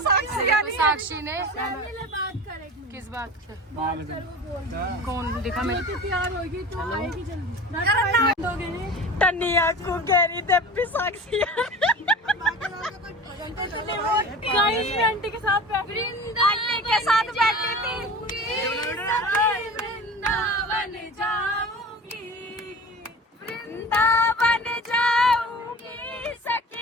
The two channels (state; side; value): normal; both; correlation 0.36